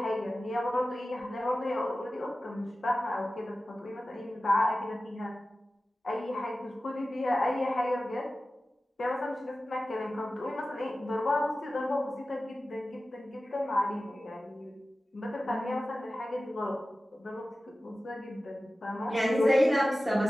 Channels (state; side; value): normal; both; correlation 0.95